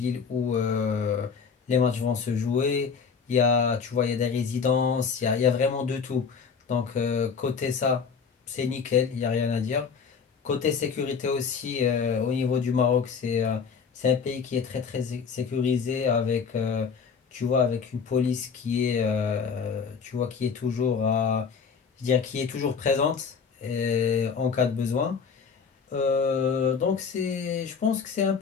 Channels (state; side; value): quieter; right; 6.0 dB